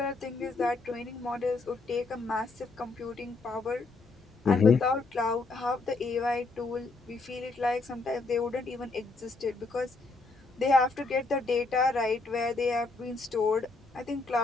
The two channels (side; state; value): right; quieter; 3.7 dB